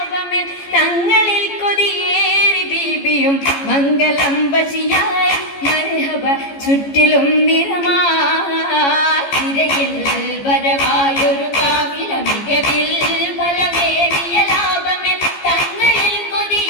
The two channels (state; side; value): late; right; 14 ms